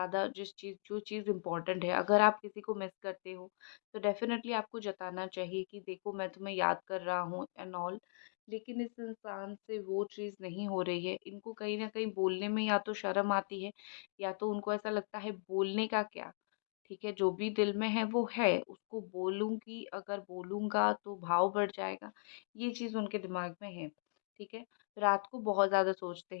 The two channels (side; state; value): right; silent; digital silence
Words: जो चीज़ इम्पोर्टेंट है। अगर आप किसी को मिस करते हो, तो डेफ़िनेटली आपको जताना चाहिए कि देखो, मैं तुम्हें याद कर रहा हूँ एंड ऑल। लेकिन इस इंसान से वो चीज़ नहीं हो रही है। इनको कहीं न कहीं बोलने में या तो शर्म आती है, या तो उनको ऐसा लगता है बोलने का क्या? ठीक है, जो भी दिल में है वो है, उसको बोलूँगी, अगर बोलूँगा तो भाव बढ़ जाएगा, ये चीज़ उनके दिमाग में है, ठीक है? रात को बहुत ज़्यादा सोचते